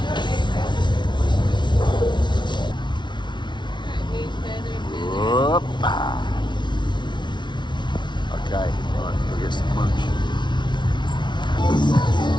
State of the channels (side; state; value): right; late; 0.22 ms